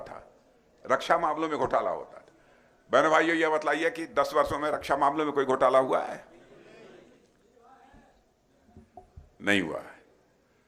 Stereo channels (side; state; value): both; identical; correlation 1.00